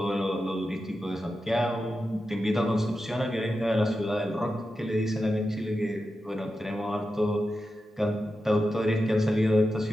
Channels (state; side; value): normal; both; correlation 0.90